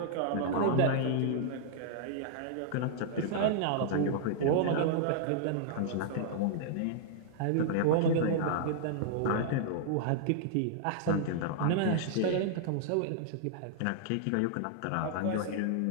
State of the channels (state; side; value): different; both; correlation -0.01